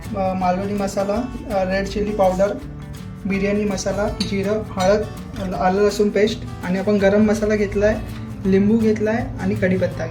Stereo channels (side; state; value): both; identical; correlation 1.00